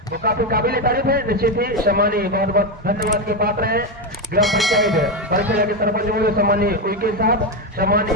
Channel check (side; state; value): both; normal; correlation 0.10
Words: वो काफी काबिल तारीफ है। निश्चित ही सम्मानीय बहुत बहुत धन्यवाद के पात्र है ग्राम पंचायत परिषद के सरपंच सम्मानीय उइके साहब,